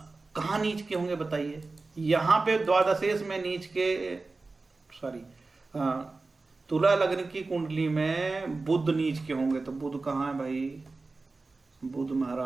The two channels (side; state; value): left; quieter; 3.6 dB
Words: कहाँ नीच के होंगे बताइए। यहाँ पे द्वादशेश में नीच के, सॉरी तुला लग्न की कुंडली में बुध नीच के होंगे। तो बुध कहाँ है भाई, बुध